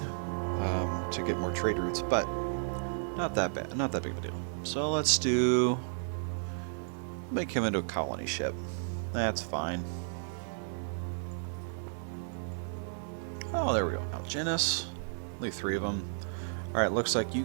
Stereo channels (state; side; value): silent; left; 56 dB below the other